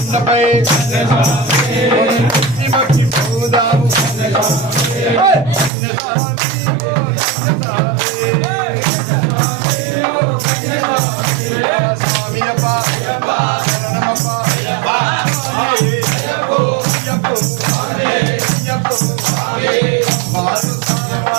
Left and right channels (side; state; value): left; drops out; at 5.7 s